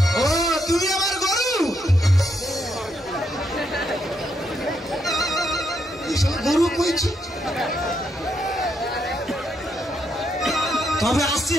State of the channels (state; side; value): normal; both; correlation 0.78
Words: ও তুমি আমার গুরু গুরু কইছি তবে আসছি